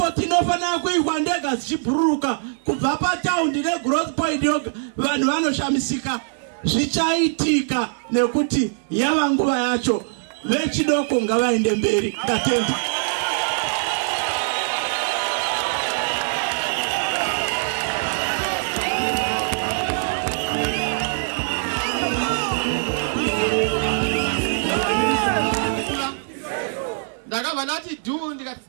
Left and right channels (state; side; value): silent; left; digital silence